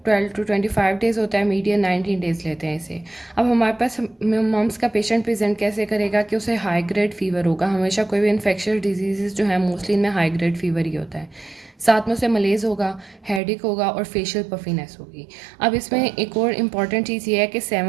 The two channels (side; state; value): left; drops out; at 13.4 s